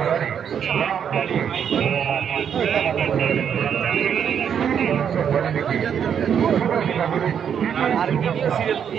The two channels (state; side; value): quieter; left; 8.1 dB